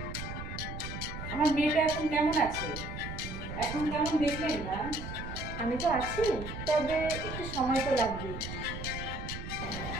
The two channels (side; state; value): right; noise; rumble, 8 dB below the sound